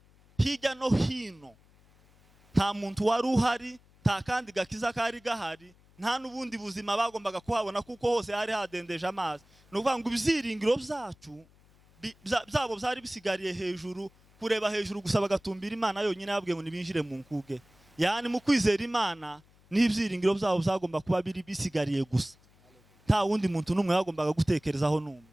hirya no hino. Nta muntu wari uhari, nta kandi gakiza kari gahari, nta n'ubundi buzima bagombaga kuhabona kuko hose hari hadendeje amazi. No kuvuga ngo ibyiringiro byacu byabo byari bisigariye hejuru, kureba hejuru gusa bagatumbira Imana yonyine yabwiye ngo nibinjire mu nkuge. Yani mu kwizera Imana n'ibyiringiro byabo byagomba kuba biri bisigariye gusa, nta wundi muntu n'umwe yagombaga gutekerezaho n'umwe.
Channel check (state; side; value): noise; left; hum, 29 dB below the sound